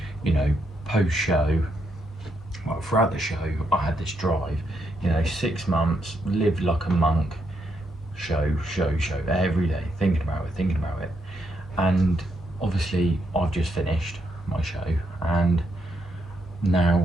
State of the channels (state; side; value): normal; both; correlation 0.78